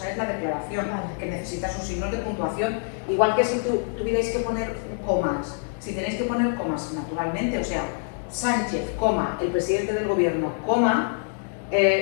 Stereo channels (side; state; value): right; silent; 61 dB below the other